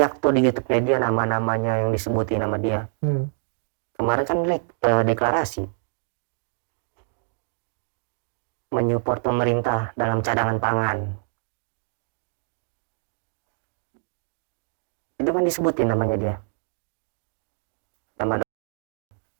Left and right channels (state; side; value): silent; left; digital silence